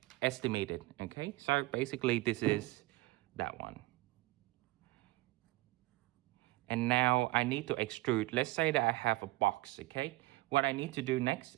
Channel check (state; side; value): quieter; left; 20.4 dB